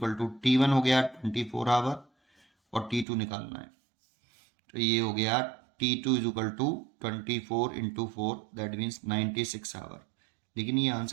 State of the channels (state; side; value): drops out; left; at 3.1 s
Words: to t1 हो गया 24 आवर और t2 निकालना है, तो ये हो गया t2 is equal to 24 into 4 that means 96 hour. लेकिन ये